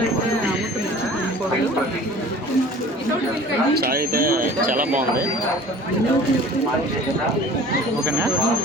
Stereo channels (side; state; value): both; normal; correlation 0.45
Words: చాయ్ అయితే చాలా బాగుంది. ఓకేనా,